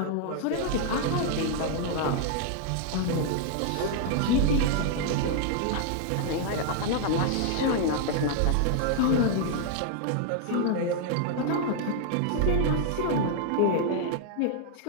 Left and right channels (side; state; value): both; different; correlation 0.00